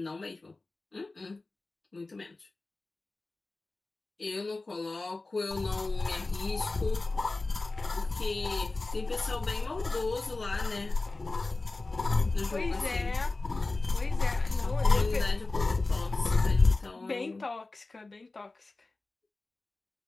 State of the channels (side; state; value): right; quieter; 3.3 dB